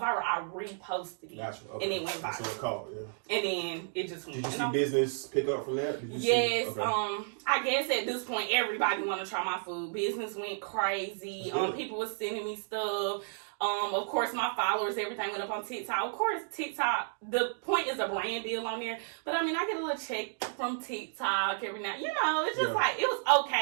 I reposted it. Gotcha. Okay. And it went That's what viral. it called, yeah. And then it just went. Did you And see I'm- business pick up from that? Did you Yes, see? Okay. I guess at this point everybody want to try my food. Business went crazy. Yeah. People were sending me stuff. Of course, my followers, everything went up on TikTok. Of course, TikTok, the point is a brand deal on there. But I mean, I get a little check from TikTok every now. You know, it's just Yeah. like, it was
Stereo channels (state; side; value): silent; left; digital silence